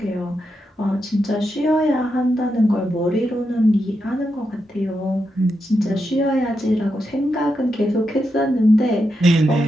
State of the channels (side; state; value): both; normal; correlation 0.85